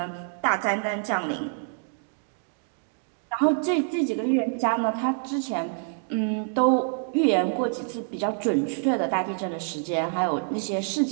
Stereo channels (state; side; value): silent; left; digital silence